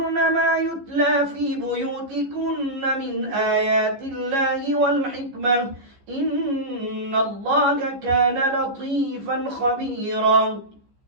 ما يتلى في بيوتكن من آيات الله والحكمة إن الله كان لطيفا خبيرا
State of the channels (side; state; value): left; late; 15 ms